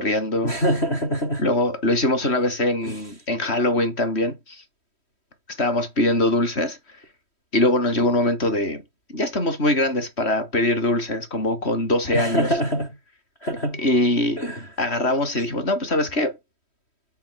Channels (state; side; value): late; right; 3.1 ms